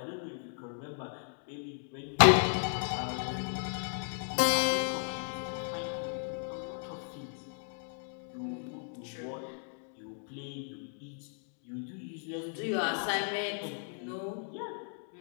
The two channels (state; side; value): silent; right; 54 dB below the other